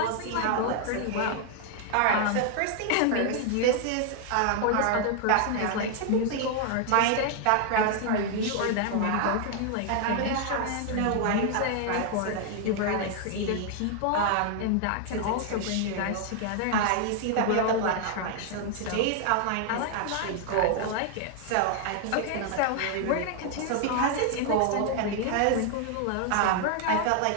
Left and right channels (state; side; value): different; both; correlation 0.00